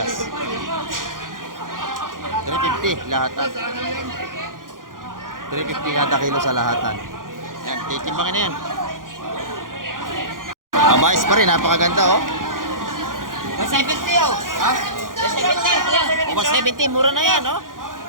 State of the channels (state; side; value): late; left; 0.90 ms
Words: 350 lahatan. 350 kada kilo sa lahatan. Yan, titimbangin na yan. Kabayas pa rin, napakaganda oh. 170 oh. Ha? 170. 170, mura na yan oh.